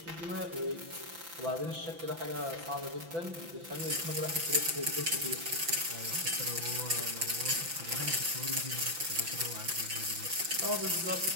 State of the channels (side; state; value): left; late; 5.9 ms